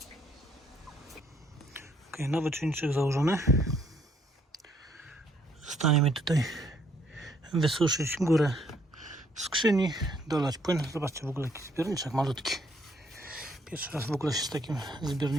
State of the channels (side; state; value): both; normal; correlation 0.67